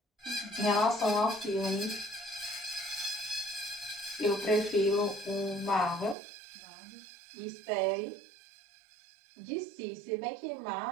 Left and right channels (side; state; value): left; drops out; at 6.2 s